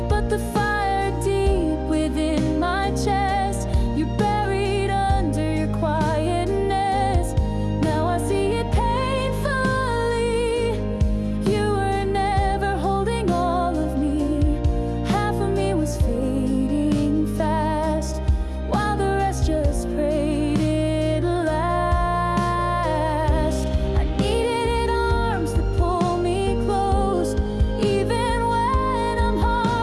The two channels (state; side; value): identical; both; correlation 1.00